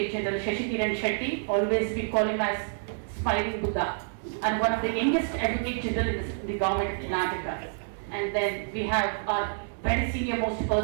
General Shashi Kiran Shetty, always we call him as Smiling Buddha, and one of the youngest Advocate General in the government of Karnataka. And then we have our very senior most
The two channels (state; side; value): silent; left; 57 dB below the other